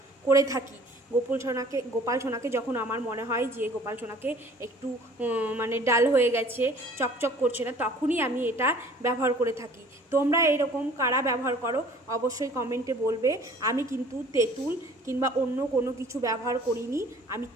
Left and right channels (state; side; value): normal; both; correlation 0.51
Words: করে থাকি। গোপাল সোনাকে যখন আমার মনে হয় যে গোপাল সোনাকে একটু ডাল হয়ে গেছে, চকচক করছে না, তখনই আমি এটা ব্যবহার করে থাকি। তোমরা এরকম কারা ব্যবহার করো অবশ্যই কমেন্টে বলবে। আমি কিন্তু তেঁতুল কিংবা অন্য কোনো কিছু ব্যবহার করিনি, আমি